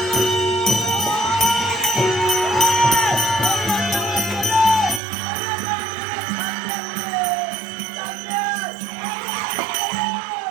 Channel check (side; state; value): left; drops out; at 5.0 s